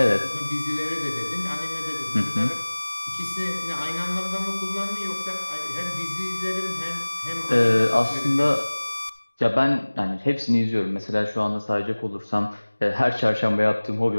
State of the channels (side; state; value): both; inverted; correlation -1.00